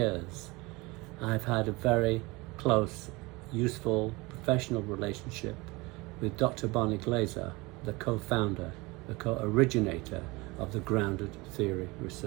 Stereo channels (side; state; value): left; quieter; 23.7 dB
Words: I've had a very close, useful, professional relationship with Dr. Barney Glaser, the co-founder, the co-originator of the grounded theory